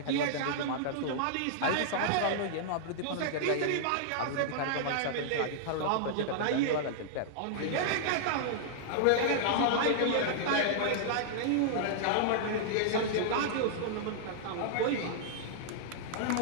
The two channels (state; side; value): different; both; correlation -0.01